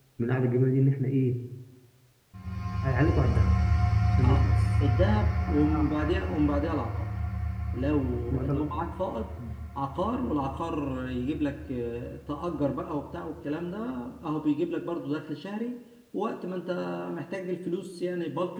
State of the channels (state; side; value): identical; both; correlation 1.00